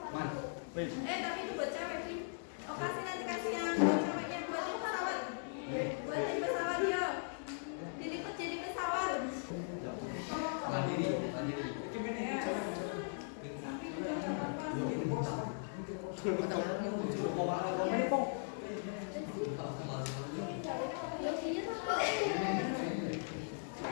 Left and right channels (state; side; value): silent; right; digital silence